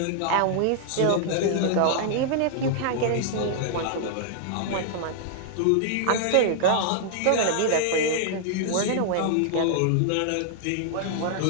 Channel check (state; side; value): different; both; correlation -0.01